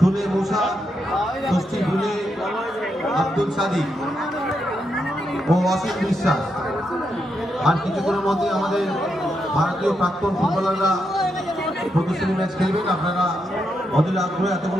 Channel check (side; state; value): both; normal; correlation 0.82